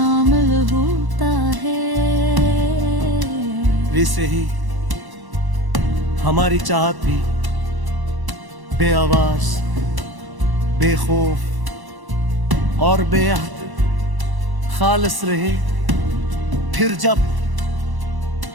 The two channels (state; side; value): late; left; 1.0 ms